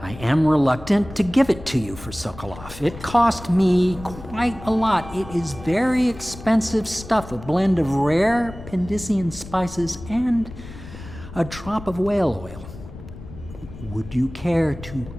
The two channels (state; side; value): noise; left; rumble, 15 dB below the sound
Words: I am reluctant to give it to you for Sokolov. It cost me quite a lot. It is very expensive stuff, a blend of rare Pendician spices and a drop of whale oil. Would you care to